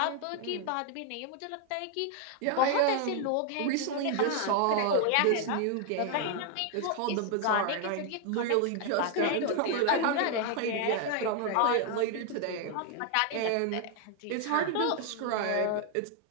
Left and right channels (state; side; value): different; both; correlation 0.00